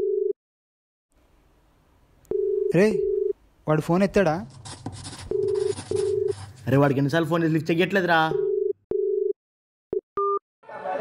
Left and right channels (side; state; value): both; identical; correlation 1.00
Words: రే వాడు ఫోన్ ఎత్తాడా? అరే వాడికి ఎన్నిసార్లు ఫోన్ లిఫ్ట్ చెయ్యట్లేదురా.